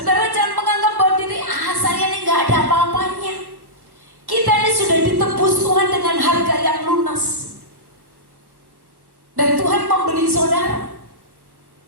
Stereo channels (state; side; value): late; left; 1.1 ms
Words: jangan menganggap bahwa diri saya ini gak ada apa-apanya. Kita ini sudah ditebus Tuhan dengan harga yang lunas. Dan Tuhan membeli saudara